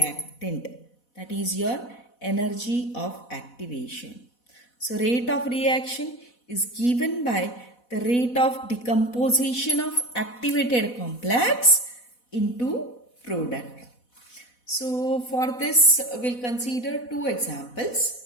That is your energy of activation. So rate of reaction is given by the rate of decomposition of activated complex into product. So for this, we'll consider two examples.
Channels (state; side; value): late; right; 4.1 ms